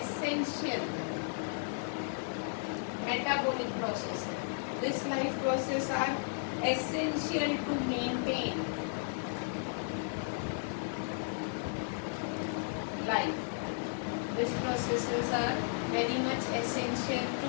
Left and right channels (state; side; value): silent; right; digital silence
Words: metabolic process. This life process are essential to maintain life. These processes are very much essential